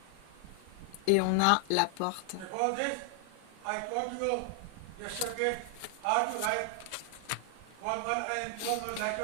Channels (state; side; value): different; both; correlation 0.00